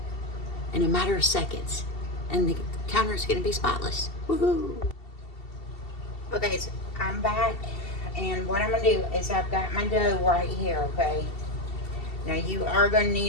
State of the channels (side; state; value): right; late; 2.7 ms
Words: in a matter of seconds. And the counter is going to be spotless. Woohoo! Okay, so I'm back. And what I'm going to do is I've got my dough right here, okay? Now you are going to